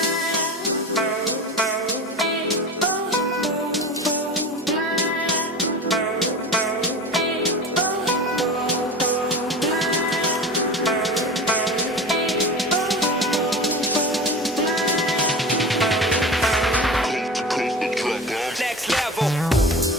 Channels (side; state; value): both; normal; correlation 0.31